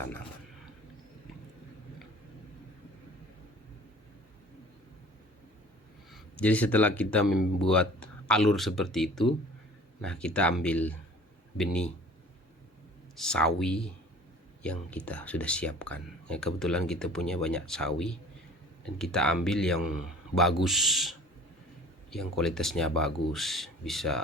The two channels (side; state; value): both; normal; correlation 0.47